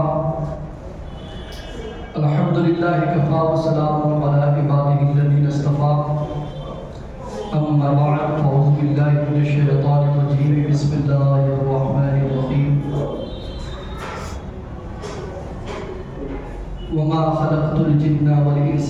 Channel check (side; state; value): both; identical; correlation 1.00